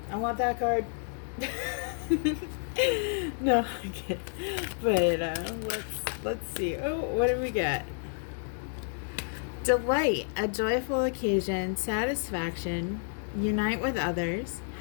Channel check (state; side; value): silent; right; 58 dB below the other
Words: I want that card. No, I can't. But let's see. Oh, what do we get? Delight, a joyful occasion, satisfaction, unite with others,